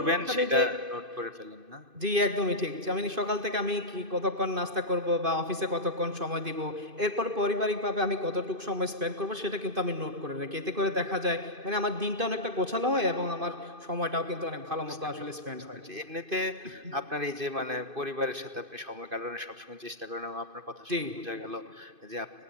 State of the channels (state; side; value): late; left; 2.5 ms